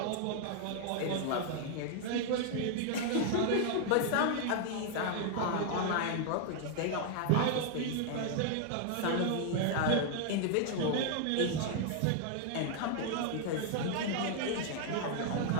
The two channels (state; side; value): different; both; correlation 0.00